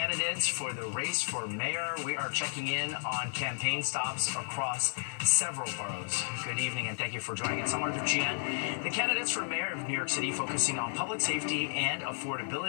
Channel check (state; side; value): silent; right; 56 dB below the other